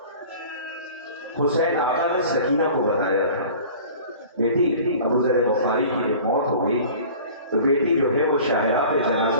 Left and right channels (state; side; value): inverted; both; correlation -0.43